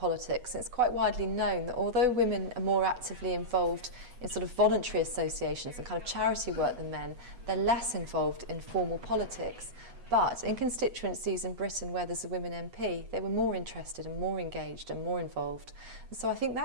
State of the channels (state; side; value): late; left; 8.1 ms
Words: It's quite widely known that although women are more actively involved in sort of voluntary associations and kind of charity work than men, they're less involved in formal politics. But in constituencies in Britain where there's a women MP, they were more interested and more engaged and more involved. And so I think